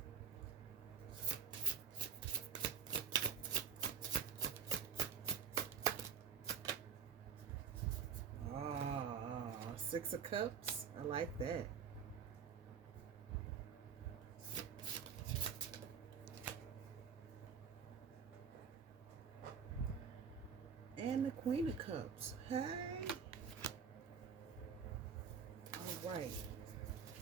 Six of Cups. I like that. And the Queen of Cups. Hey. All right.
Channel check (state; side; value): quieter; left; 6.6 dB